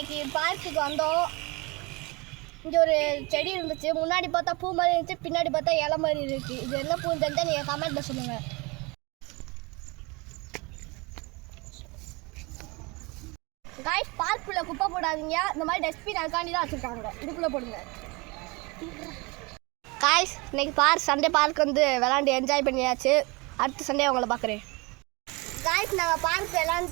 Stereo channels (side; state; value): left; quieter; 26.6 dB